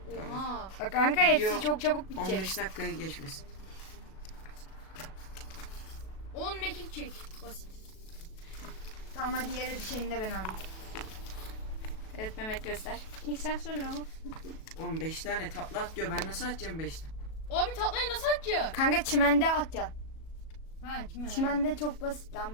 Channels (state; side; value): late; right; 37 ms